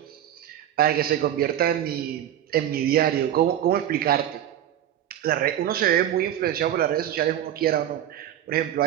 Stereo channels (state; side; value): quieter; left; 11.2 dB